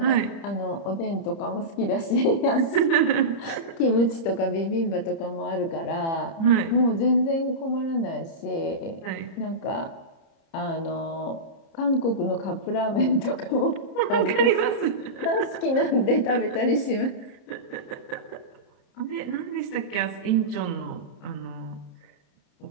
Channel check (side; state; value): right; late; 30 ms